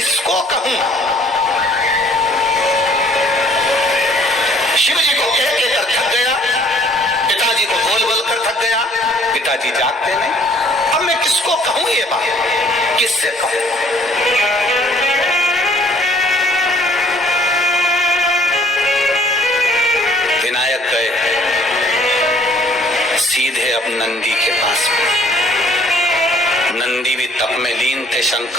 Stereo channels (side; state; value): both; normal; correlation 0.59